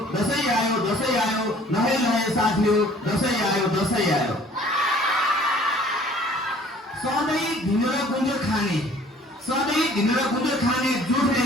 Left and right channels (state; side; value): normal; both; correlation 0.54